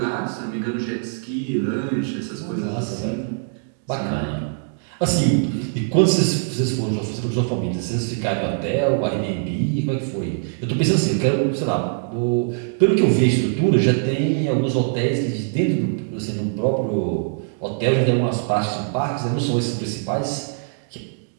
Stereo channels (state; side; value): silent; left; digital silence